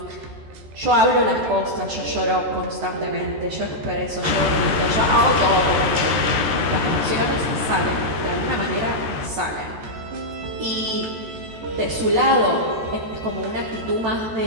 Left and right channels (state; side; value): late; left; 14 ms